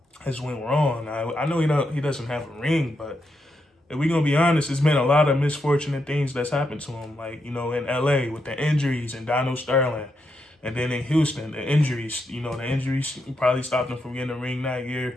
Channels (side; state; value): both; normal; correlation 0.82